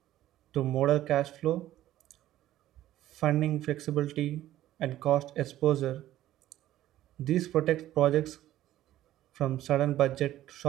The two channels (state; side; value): quieter; left; 13.8 dB